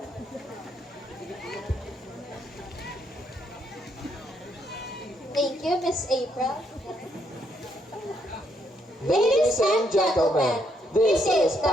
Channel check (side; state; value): both; normal; correlation 0.74